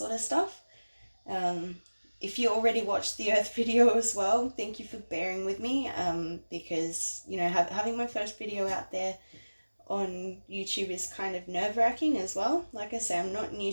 of stuff. If you already watched the Earth video as well, thank you for bearing with me, because, having my first video out there on YouTube is kind of nerve-wracking as well. Like I say, I'm not new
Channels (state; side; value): inverted; both; correlation -1.00